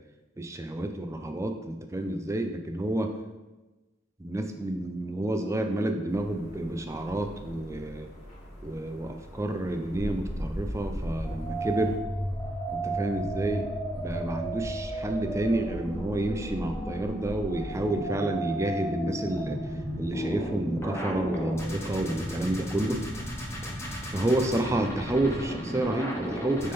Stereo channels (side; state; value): both; normal; correlation 0.78